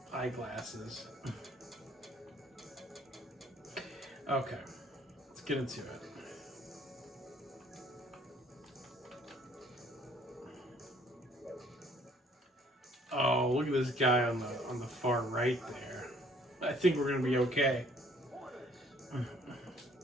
eyeglasses. Okay, let's get into it. Oh, look at this guy on the far right there. I think we're gonna be okay.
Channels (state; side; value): normal; both; correlation 0.60